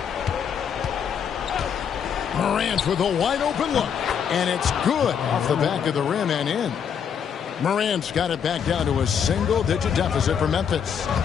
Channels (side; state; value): right; quieter; 7.7 dB